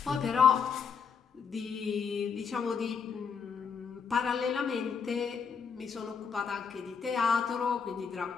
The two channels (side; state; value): right; quieter; 6.3 dB